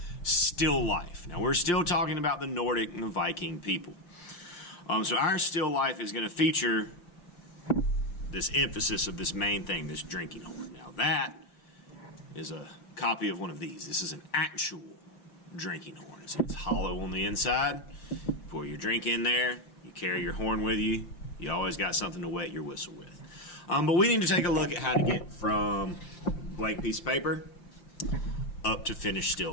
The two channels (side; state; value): right; late; 5.8 ms